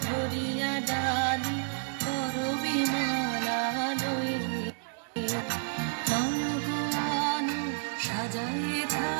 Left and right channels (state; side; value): silent; left; 58 dB below the other